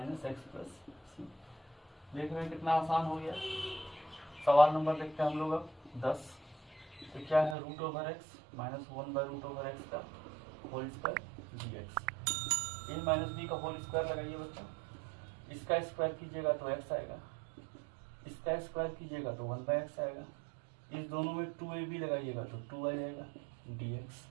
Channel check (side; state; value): left; drops out; at 7.6 s